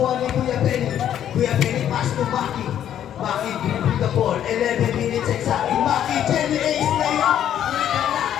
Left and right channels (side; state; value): right; quieter; 10.4 dB